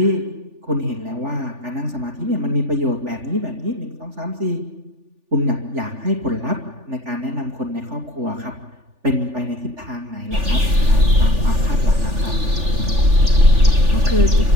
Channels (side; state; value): left; late; 3.4 ms